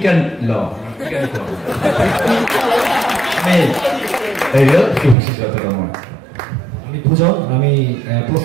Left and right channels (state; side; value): drops out; left; at 5.2 s